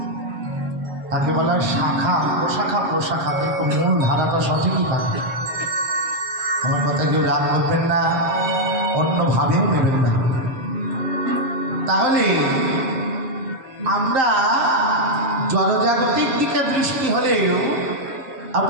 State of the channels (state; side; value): late; left; 7.6 ms